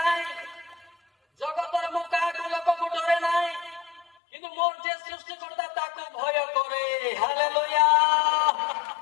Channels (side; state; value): right; drops out; at 4.0 s